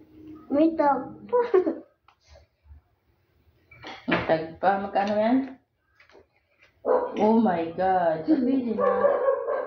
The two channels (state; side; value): identical; both; correlation 1.00